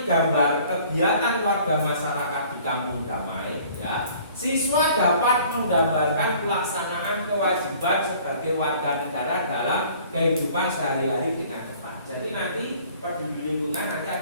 gambar kegiatan warga masyarakat di Kampung Damai, ya, siswa dapat menggambarkan pelaksanaan kewajiban sebagai warga negara dalam kehidupan sehari-hari dengan tepat. Jadi nanti peduli lingkungan nanti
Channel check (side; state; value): both; inverted; correlation -0.53